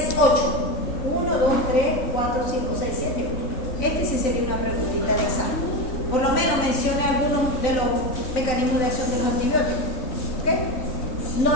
8. 1, 2, 3, 4, 5, 6, 7, 8. Este sí sería una preguntita de examen. Por lo menos mencione algunos de los mecanismos de acción de los antibióticos. ¿Ok?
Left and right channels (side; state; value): right; late; 3.9 ms